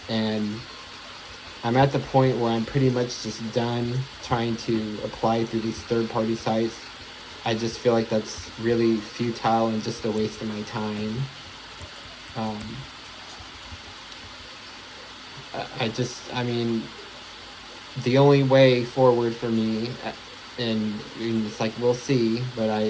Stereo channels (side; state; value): both; identical; correlation 1.00